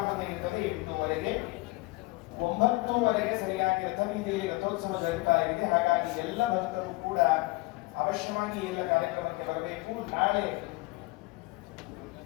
ಇರ್ತದೆ. 8:15 9:00 ಸರಿಯಾಗಿ ರಥಬೀದಿಯಲ್ಲಿ ರಥೋತ್ಸವ ಜರುಗ್ತಾ ಇದೆ. ಹಾಗಾಗಿ ಎಲ್ಲ ಭಕ್ತರು ಕೂಡ ಅವಶ್ಯವಾಗಿ ಎಲ್ಲ ಕಾರ್ಯಕ್ರಮಕ್ಕೆ ಬರಬೇಕು. ನಾಳೆ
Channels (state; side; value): quieter; right; 21.9 dB